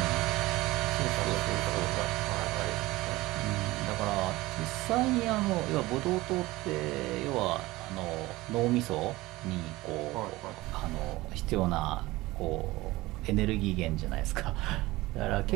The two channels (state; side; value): quieter; left; 19.3 dB